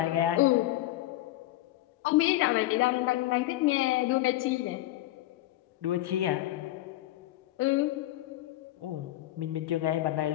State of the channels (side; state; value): right; quieter; 16.0 dB